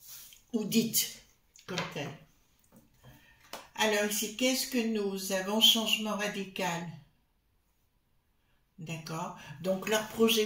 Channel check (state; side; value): identical; both; correlation 1.00